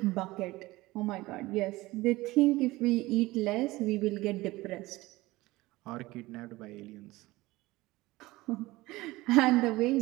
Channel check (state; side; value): quieter; left; 19.6 dB